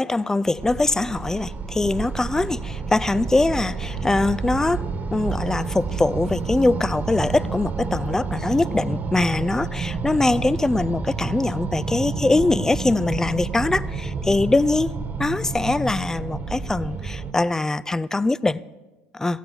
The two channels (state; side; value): normal; both; correlation 0.90